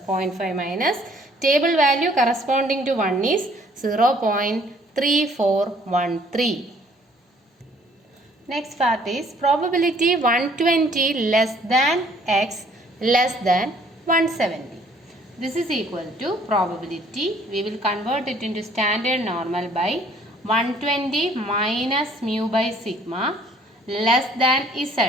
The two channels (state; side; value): normal; both; correlation 0.59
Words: 0.5 minus table value corresponding to 1 is 0.3413. Next part is probability 120 less than x less than 170. This is equal to probability. We will convert it into standard normal by 120 minus mu by sigma less than